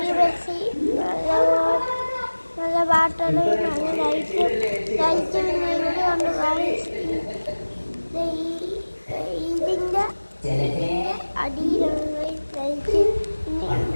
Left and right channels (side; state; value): both; inverted; correlation -1.00